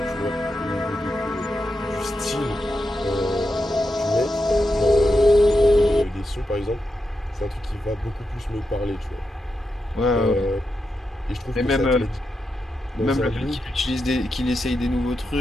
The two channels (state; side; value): normal; both; correlation 0.87